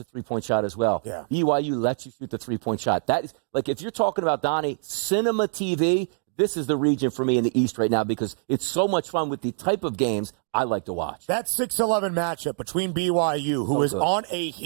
three-point shot as well. Yeah. BYU lets you shoot the three-point shot. That is, like, if you're talking about, Donnie, cinema TV, this is the region for me in the East right now, because it's so much fun with the type of games I like to watch. That 6-11 matchup between BYU, who is on a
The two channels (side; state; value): left; silent; digital silence